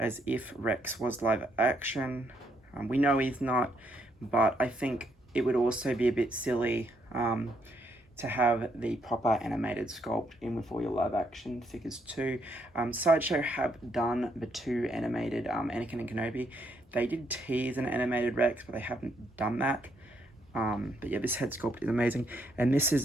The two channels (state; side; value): normal; both; correlation 0.74